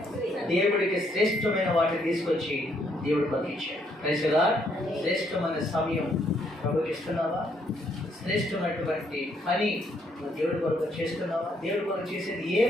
దేవుడికి శ్రేష్టమైన వాటిని తీసుకొచ్చి దేవుడు పంపించాడు. Praise the lord. శ్రేష్టమైన సమయం ప్రభుకి ఇస్తున్నావా? శ్రేష్టమైనటువంటి పని నువ్వు దేవుడి కొరకు చేస్తున్నావా? దేవుడి కొరకు చేసేది ఏ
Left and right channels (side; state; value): both; normal; correlation 0.71